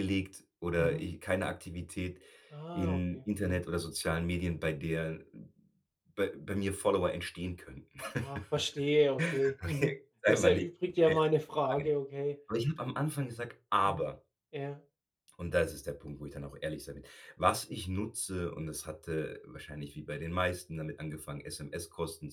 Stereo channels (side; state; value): both; identical; correlation 1.00